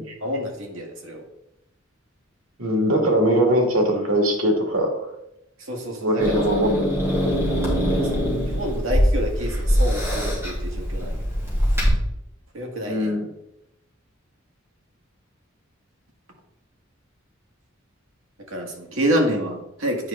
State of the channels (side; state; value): both; normal; correlation 0.47